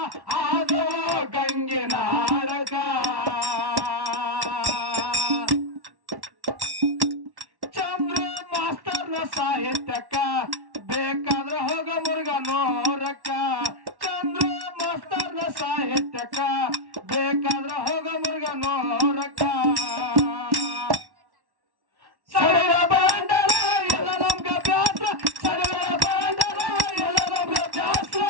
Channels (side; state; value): left; late; 1.1 ms